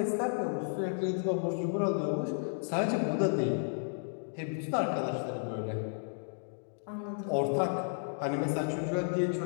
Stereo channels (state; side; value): silent; right; digital silence